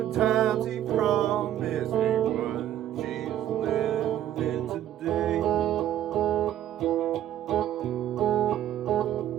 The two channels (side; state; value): left; quieter; 11.7 dB